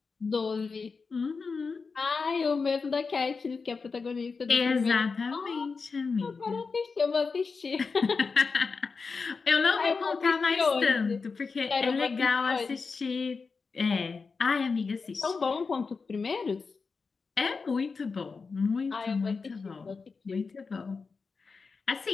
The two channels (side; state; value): right; quieter; 4.8 dB